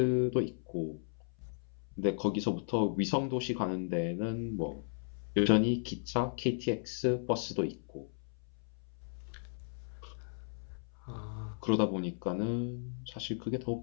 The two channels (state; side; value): silent; right; 54 dB below the other